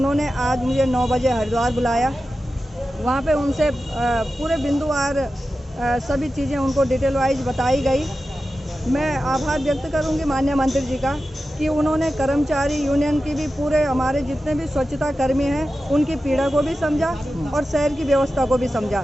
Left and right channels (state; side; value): normal; both; correlation 0.93